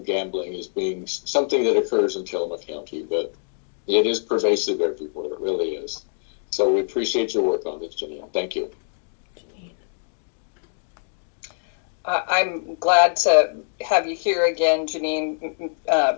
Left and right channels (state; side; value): silent; right; digital silence